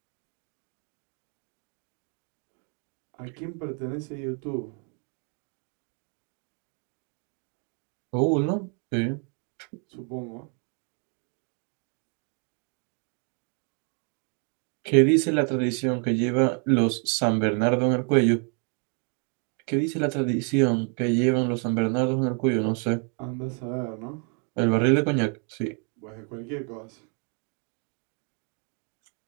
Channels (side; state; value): left; quieter; 38.4 dB